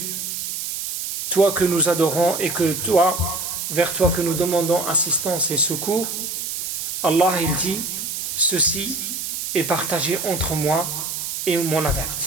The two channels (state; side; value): noise; right; hiss, 4 dB below the sound